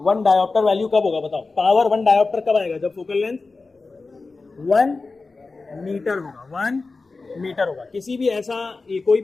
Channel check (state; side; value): quieter; right; 3.9 dB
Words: डायोप्टर वैल्यू कब होगा बताओ? पावर 1 डायोप्टर कब आएगा? जब फोकल लेंथ 1 मीटर होगा, 1 मीटर होगा। किसी भी ऐसा, कोई